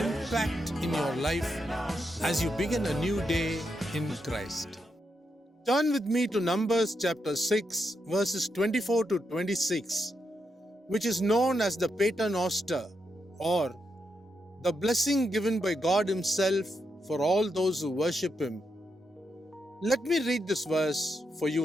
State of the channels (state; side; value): normal; both; correlation 0.83